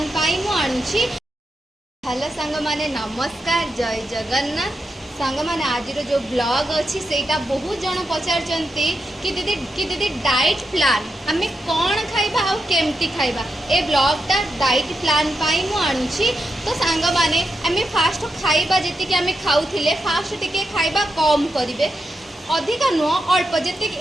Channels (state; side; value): normal; both; correlation 0.86